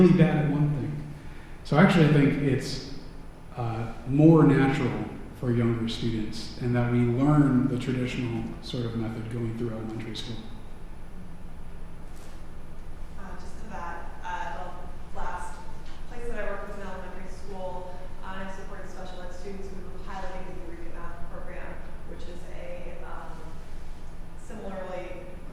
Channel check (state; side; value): identical; both; correlation 1.00